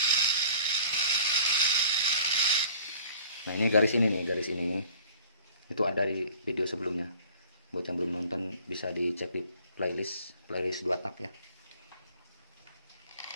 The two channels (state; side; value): inverted; both; correlation -0.50